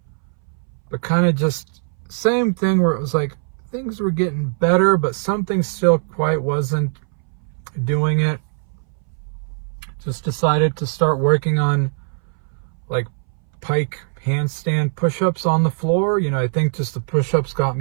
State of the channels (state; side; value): silent; left; 62 dB below the other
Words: but kind of just same thing where it was like things were getting better, but something still quite wasn't doing it. Just decided to start working on like pike handstand push-ups on the floor. I think just the push-ups got